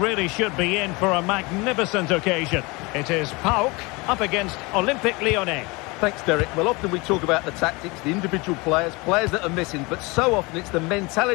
should be in for a magnificent occasion. It is PAOK up against Olympique Lyonnais. Thanks, Derek. Well, often we talk about the tactics, the individual players that are missing, but so often it's the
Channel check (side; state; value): right; quieter; 25.7 dB